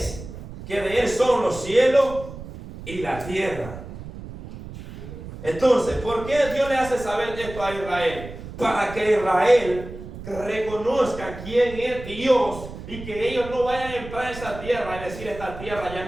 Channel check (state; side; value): noise; right; rumble, 12 dB below the sound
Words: que de Él son los cielos y la tierra. Entonces, ¿por qué Dios le hace saber esto a Israel? Para que Israel reconozca quién es Dios y que ellos no vayan a entrar a esa tierra y decir: esta tierra ya